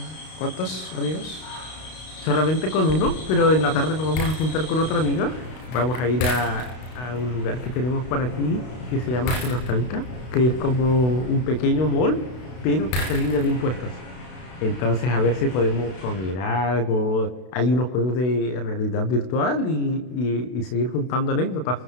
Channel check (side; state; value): right; late; 32 ms